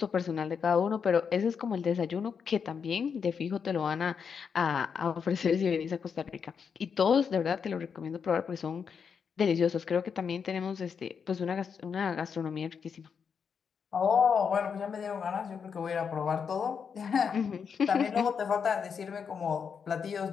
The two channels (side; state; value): right; quieter; 6.5 dB